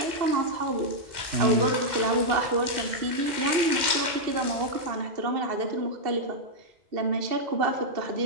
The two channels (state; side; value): late; left; 2.1 ms